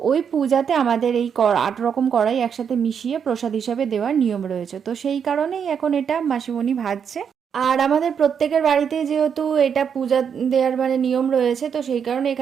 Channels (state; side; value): quieter; left; 7.3 dB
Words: ওই পূজাতে আমাদের এই 8 রকম কড়াই একসাথে মিশিয়ে প্রসাদ হিসাবে দেওয়ার নিয়ম রয়েছে। তো সেই কারণেই এখন এটা মাসিমণি ভাজছে। আর আমাদের প্রত্যেকের বাড়িতে যেহেতু এটা পূজা দেওয়ার মানে নিয়ম রয়েছে, তো সেই কারণে